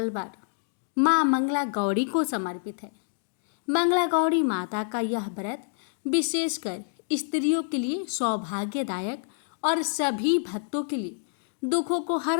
माँ मंगला गौरी को समर्पित है। मंगला गौरी माता का यह व्रत विशेषकर स्त्रियों के लिए सौभाग्यदायक और सभी भक्तों के लिए दुखों को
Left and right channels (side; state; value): right; silent; digital silence